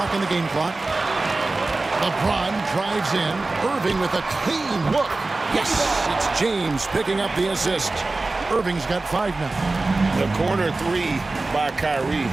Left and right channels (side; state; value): left; quieter; 3.3 dB